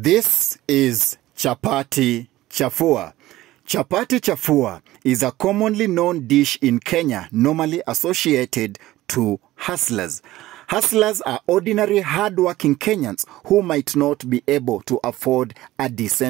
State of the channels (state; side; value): quieter; left; 16.3 dB